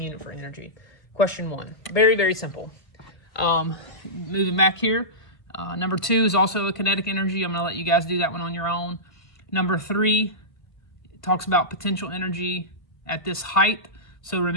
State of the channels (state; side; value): late; right; 1.6 ms